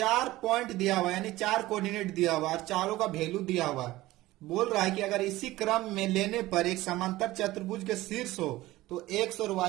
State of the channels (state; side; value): quieter; left; 17.6 dB